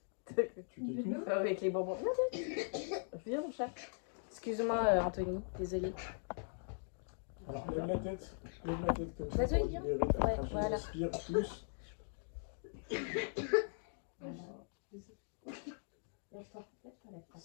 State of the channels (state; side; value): silent; right; digital silence